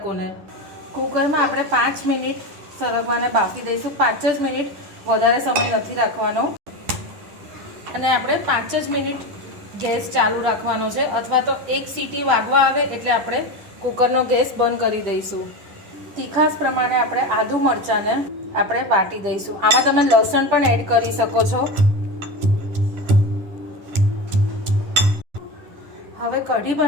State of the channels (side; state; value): left; late; 10 ms